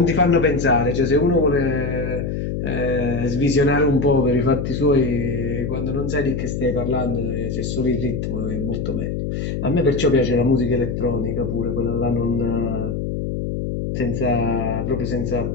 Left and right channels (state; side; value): noise; left; hum, 3 dB below the sound